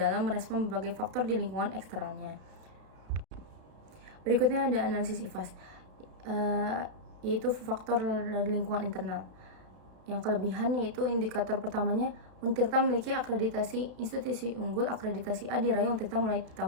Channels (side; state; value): left; late; 32 ms